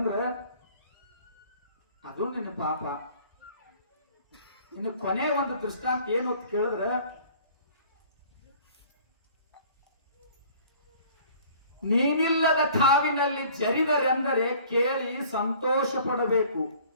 ಅದು ನಿನ್ನ ಪಾಪ. ಇನ್ನು ಕೊನೆ ಒಂದು ದೃಷ್ಟಾಂತ ಏನು ಅಂತ ಕೇಳಿದ್ರೆ, ನೀನಿಲ್ಲದ ಠಾವಿನಲ್ಲಿ ಜರಿದರೆಂದರೆ ಕೇಳಿ ಸಂತೋಷ ಪಡಬೇಕು.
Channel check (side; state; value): both; inverted; correlation -0.51